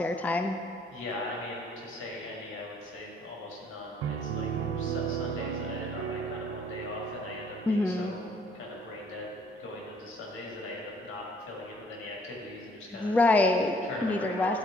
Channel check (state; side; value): normal; both; correlation 0.60